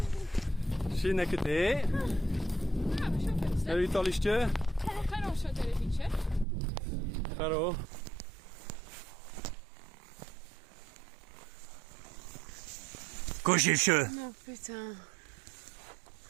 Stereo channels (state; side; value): drops out; left; at 6.5 s